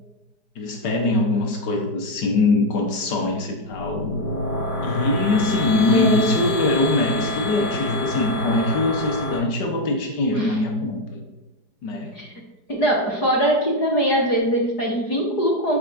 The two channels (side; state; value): right; late; 5.2 ms